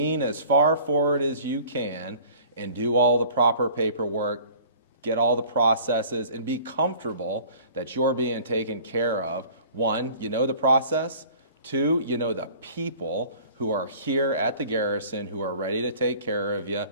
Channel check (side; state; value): both; inverted; correlation -0.48